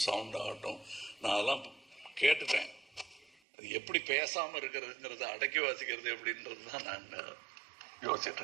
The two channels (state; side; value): drops out; left; at 3.4 s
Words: sound ஆகட்டும், நான் அதெல்லாம் கேட்டுட்டேன். அது எப்படி பேசாமல் இருக்கிறதுங்கிறத அடக்கி வாசிக்கிறது எப்படின்றது தான் நான் யோசிச்சுட்டு